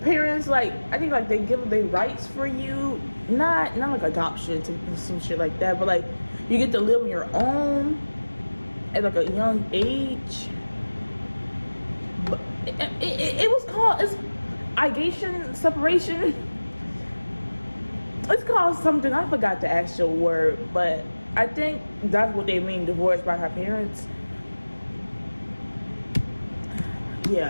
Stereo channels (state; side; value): inverted; both; correlation -1.00